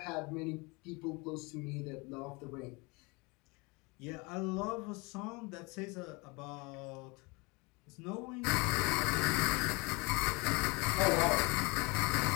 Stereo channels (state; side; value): quieter; right; 27.4 dB